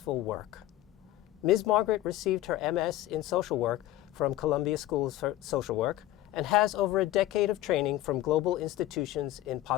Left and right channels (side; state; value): right; quieter; 14.7 dB